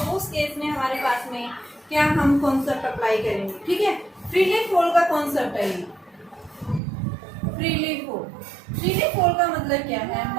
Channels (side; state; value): left; drops out; at 6.8 s